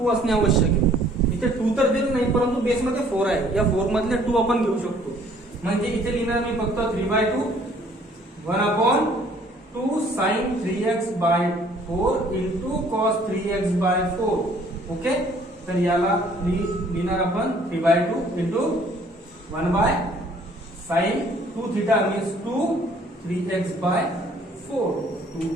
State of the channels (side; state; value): both; normal; correlation 0.58